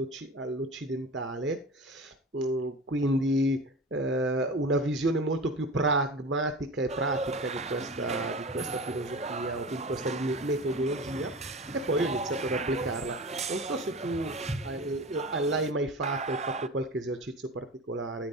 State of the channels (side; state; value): both; normal; correlation 0.33